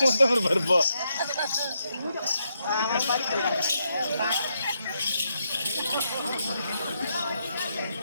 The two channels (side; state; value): both; inverted; correlation -0.80